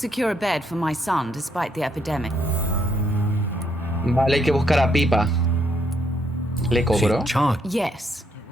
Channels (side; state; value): both; normal; correlation 0.73